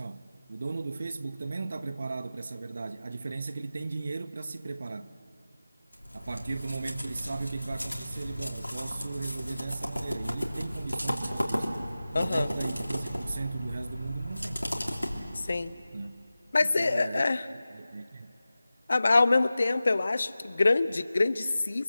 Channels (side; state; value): both; inverted; correlation -0.96